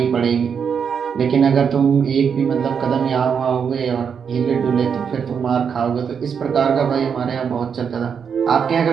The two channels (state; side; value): quieter; left; 6.9 dB